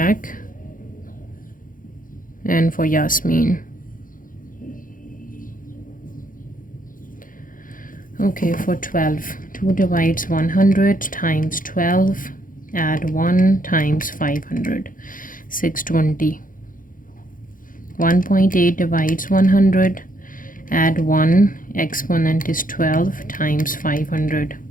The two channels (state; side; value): late; right; 0.40 ms